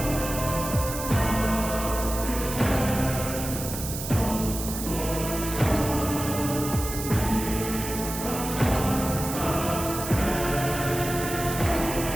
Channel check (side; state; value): right; noise; hiss, 7 dB below the sound